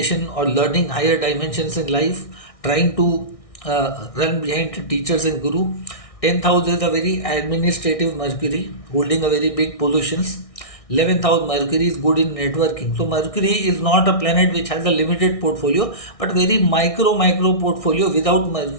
or learning higher dimensions in life, trying to run behind teachers and guru. Tenth house is a very administrative Mercury, holding a very big positions. 11th house Mercury is good in networking. So Mercury is not a planet which has a limited portfolio, but very micro portfolio. Without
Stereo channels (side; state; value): right; late; 1.6 ms